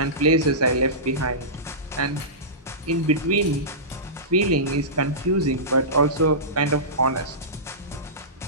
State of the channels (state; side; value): normal; both; correlation -0.20